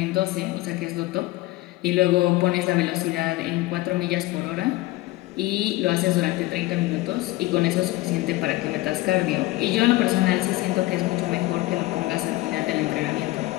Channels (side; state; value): right; quieter; 18.7 dB